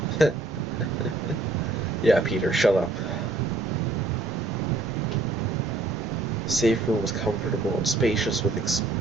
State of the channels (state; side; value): quieter; left; 3.3 dB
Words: Yeah, Peter, shut up. The safe room was comfortable and spacious with